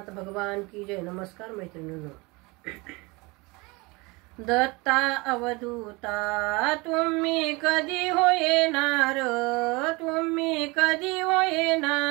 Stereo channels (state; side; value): quieter; left; 25.4 dB